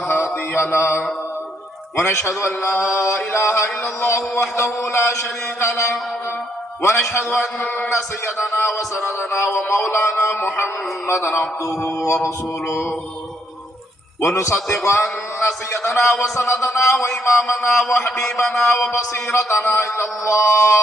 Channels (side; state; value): both; normal; correlation 0.72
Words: هادي له ونشهد أن لا إله إلا الله وحده لا شريك له ونشهد أن سيدنا وسندنا ومولانا محمدا عبده ورسوله ونصدق أن سيدنا وسندنا وإمامنا وحبيبنا وبصيرتنا إلى